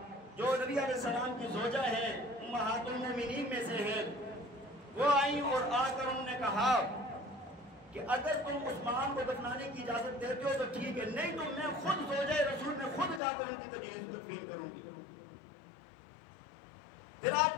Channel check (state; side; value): drops out; right; at 13.2 s